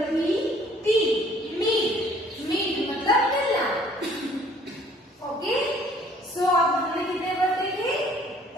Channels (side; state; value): both; normal; correlation 0.57